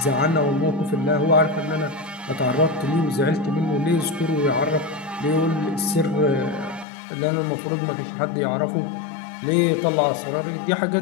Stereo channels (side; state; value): right; drops out; at 6.9 s